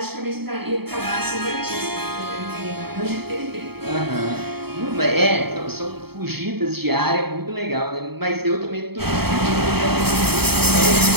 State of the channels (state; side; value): late; left; 0.96 ms